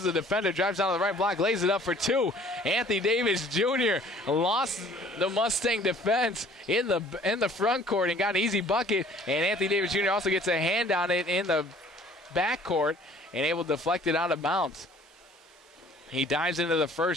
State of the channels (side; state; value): both; normal; correlation 0.54